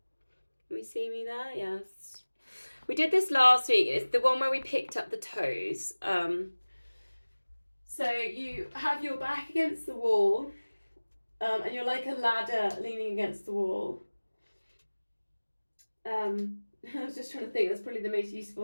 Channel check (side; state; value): both; inverted; correlation -1.00